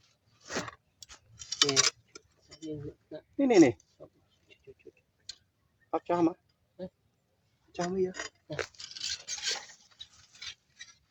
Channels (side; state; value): both; identical; correlation 1.00